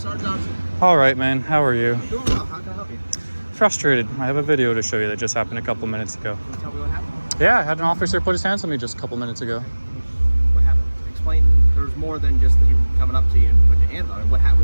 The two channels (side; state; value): both; inverted; correlation -1.00